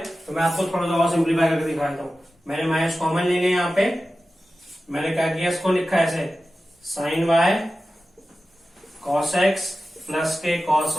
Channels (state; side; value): normal; both; correlation 0.95